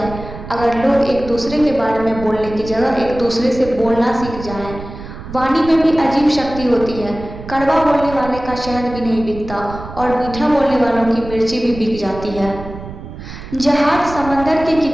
अगर लोग एक दूसरे के बारे में बोलने की जगह एक दूसरे से बोलना सीख जाएं। वाणी में भी अजीब शक्ति होती है। कड़वा बोलने वाले का शहद भी नहीं बिकता और मीठा बोलने वालों की मिर्ची भी बिक जाती है। जहाज समंदर के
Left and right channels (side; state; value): right; noise; rumble, 12 dB below the sound